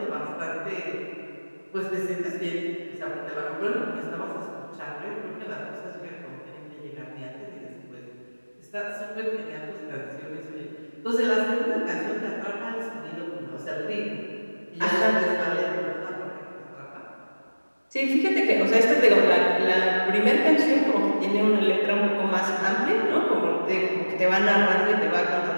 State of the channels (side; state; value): both; inverted; correlation -1.00